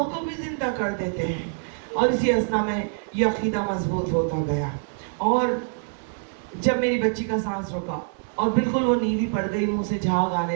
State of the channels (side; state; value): left; silent; 62 dB below the other